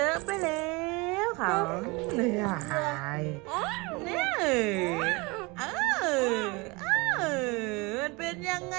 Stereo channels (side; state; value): left; quieter; 26.2 dB